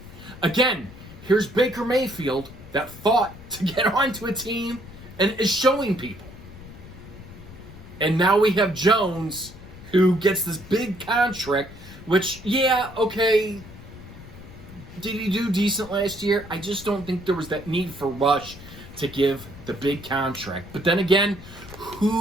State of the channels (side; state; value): left; noise; rumble, 16 dB below the sound